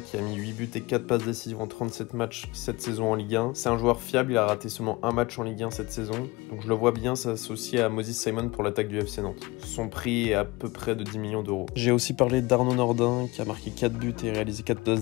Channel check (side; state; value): right; quieter; 22.8 dB